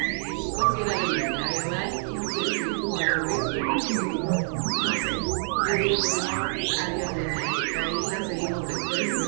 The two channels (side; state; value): left; silent; digital silence